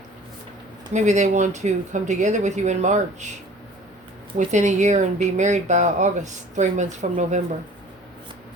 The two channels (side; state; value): both; normal; correlation 0.47